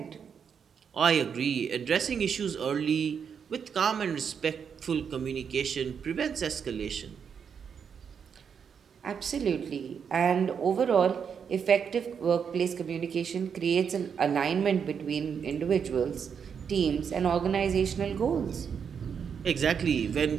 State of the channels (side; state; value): left; quieter; 7.0 dB